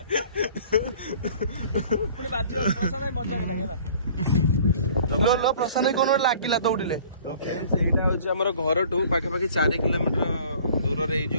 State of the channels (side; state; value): both; inverted; correlation -0.50